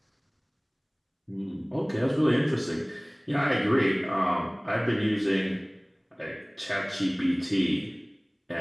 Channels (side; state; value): both; identical; correlation 1.00